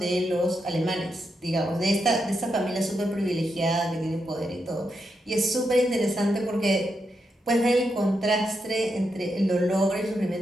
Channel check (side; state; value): both; normal; correlation 0.84